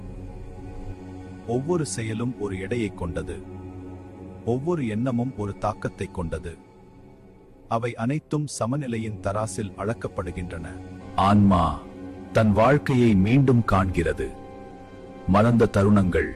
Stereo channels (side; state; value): both; identical; correlation 1.00